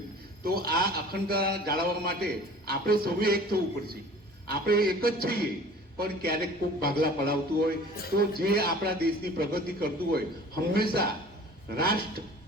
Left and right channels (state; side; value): normal; both; correlation 0.46